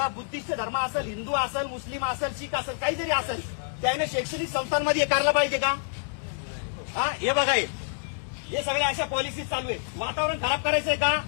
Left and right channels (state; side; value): silent; right; digital silence